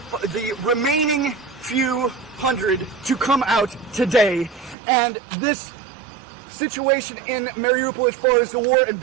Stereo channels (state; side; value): drops out; left; at 4.8 s